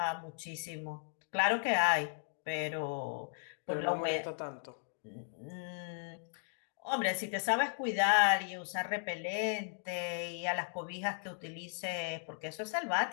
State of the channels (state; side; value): silent; right; digital silence